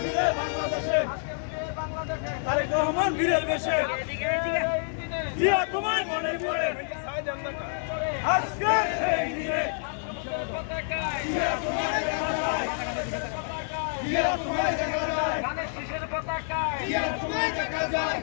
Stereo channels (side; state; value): right; silent; digital silence